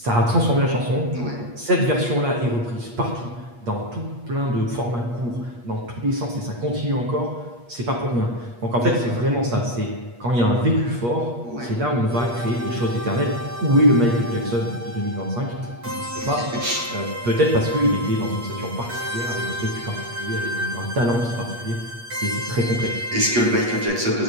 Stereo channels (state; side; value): late; left; 8.4 ms